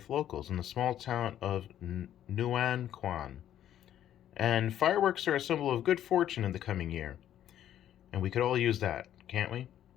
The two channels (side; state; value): right; quieter; 11.1 dB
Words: locals in the small town of Nuanquan. And fireworks are a symbol of good fortune in the coming year. And we could all use that, can't we?